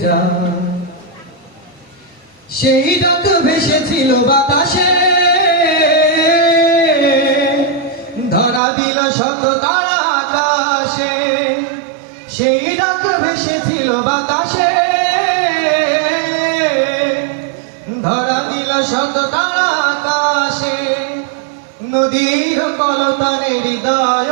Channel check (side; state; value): left; drops out; at 8.6 s